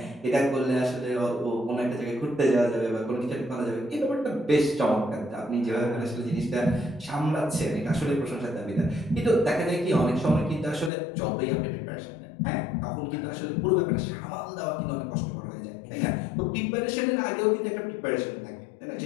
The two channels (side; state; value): right; drops out; at 10.9 s